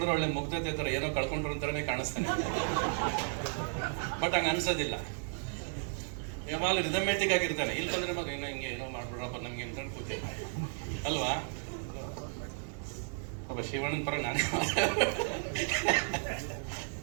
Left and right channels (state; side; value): silent; left; 55 dB below the other